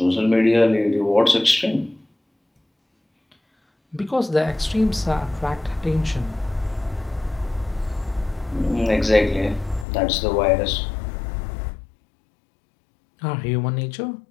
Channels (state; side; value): drops out; right; at 9.9 s